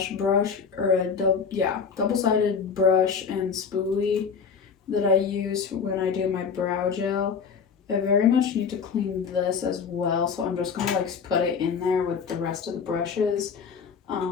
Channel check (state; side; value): quieter; right; 6.1 dB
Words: brush, or a double-sided brush and spoolie that I use when I do my brow gel. I very much need to clean this as well, so I'm just gonna like put it in there with the rest of the brushes. I